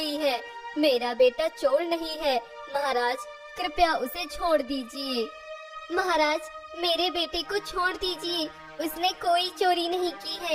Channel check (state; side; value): identical; both; correlation 1.00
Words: है? मेरा बेटा चोर नहीं है। महाराज, कृपया उसे छोड़ दीजिए। महाराज, मेरे बेटे को छोड़ दीजिए, उसने कोई चोरी नहीं की